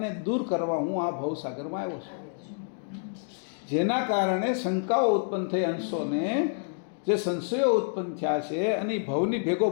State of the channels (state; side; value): silent; right; 59 dB below the other